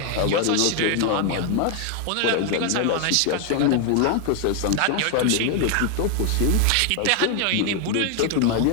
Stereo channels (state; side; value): different; both; correlation 0.00